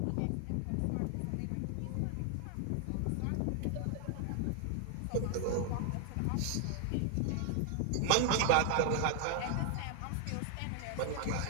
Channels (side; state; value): both; different; correlation 0.00